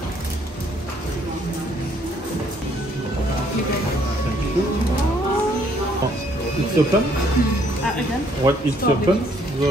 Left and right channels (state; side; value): normal; both; correlation 0.66